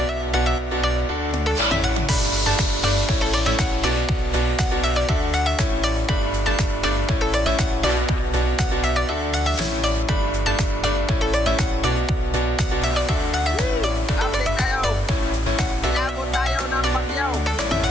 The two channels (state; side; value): normal; both; correlation 0.74